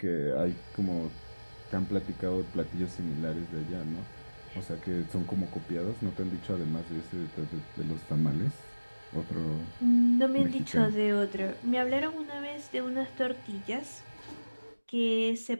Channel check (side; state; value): both; inverted; correlation -1.00